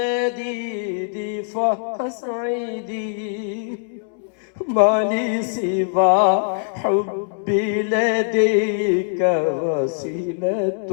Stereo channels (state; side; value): silent; right; 64 dB below the other